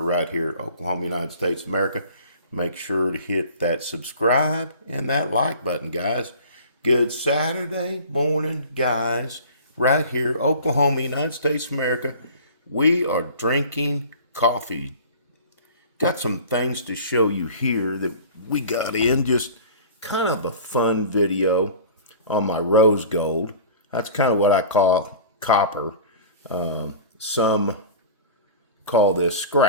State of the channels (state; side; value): inverted; both; correlation -0.41